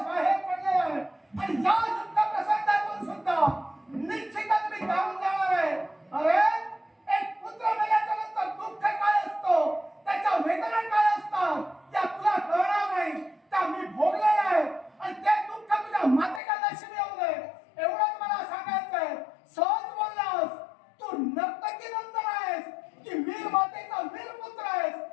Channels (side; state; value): right; drops out; at 16.4 s